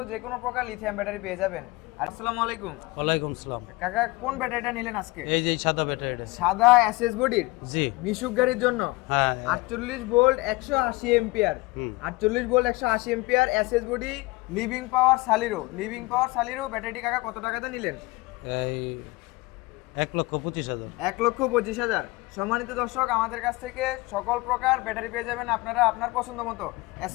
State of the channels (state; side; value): quieter; right; 22.4 dB